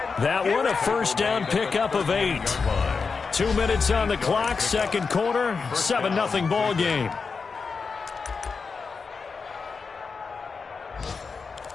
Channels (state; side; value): quieter; right; 5.0 dB